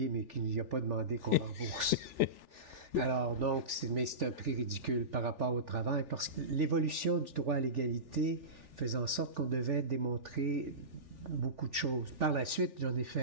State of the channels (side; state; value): left; late; 3.4 ms